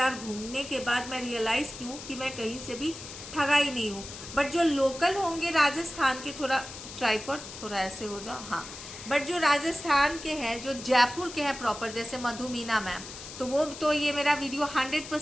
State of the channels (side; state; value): left; noise; hiss, 12 dB below the sound